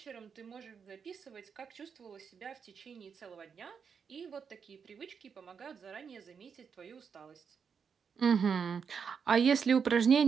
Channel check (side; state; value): left; quieter; 6.5 dB